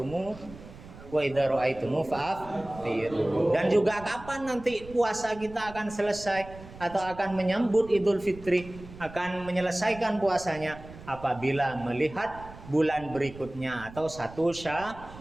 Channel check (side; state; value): right; noise; rumble, 17 dB below the sound